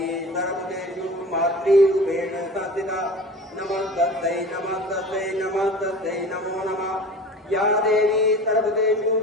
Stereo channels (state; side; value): normal; both; correlation 0.38